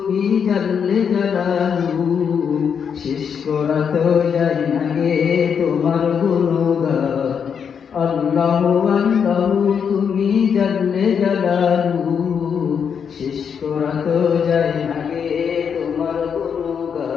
জানলে জালালু, শেষ করা তো যায় না রে তোমার গুণগান। আল্লাহু আল্লাহু তুমি জানলে জালালু, শেষ করা তো যায় না রে তোমার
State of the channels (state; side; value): quieter; right; 7.1 dB